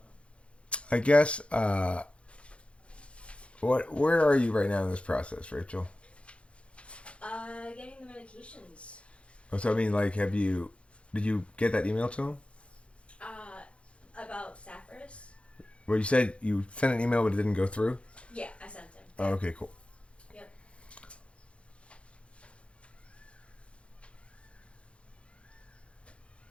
I guess. Where are you right now in this process, Rachel? Getting the medications. Oh, so I mean, like, did you get that email to him? About Sapphiris? Well, you said you sent an email but it didn't go through? Yeah, I sent him. Oh, okay, cool. Yep.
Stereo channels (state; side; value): late; right; 0.060 ms